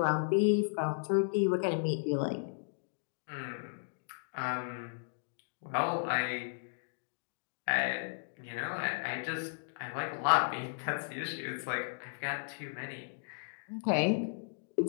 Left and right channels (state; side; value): silent; right; digital silence